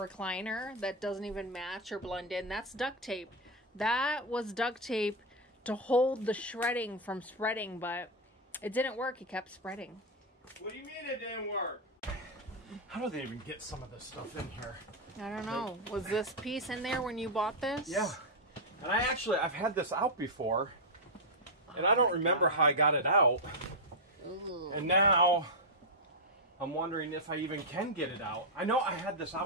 that doesn't even match or blend in, that's duct tape. That was duct tape to hold the shredding from spreading, but it didn't work. It kept spreading. What do you mean it didn't work? How do they even get some of this stuff in here? I don't know. Was this piece in there when you bought this? Yeah. And I've had this out before, and I don't remember how I got it out. Ooh. And now, I'm wondering if I even can get it out. I know I had this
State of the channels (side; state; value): both; normal; correlation -0.01